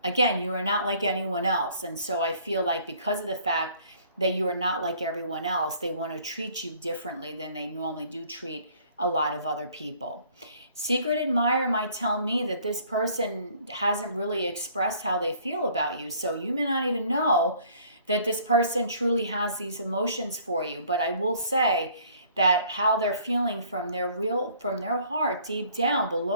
Again, you are not like anyone else. And so I feel like because of the fact that you are not like everyone else, they want to treat you differently than they normally do treat a lot of other people. Secret admirer might tell me that this person hasn't really expressed how they feel about you. So you may not even know that this person truly has these emotions for you. But I will say that how they're feeling from their heart, deep down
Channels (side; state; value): both; inverted; correlation -0.57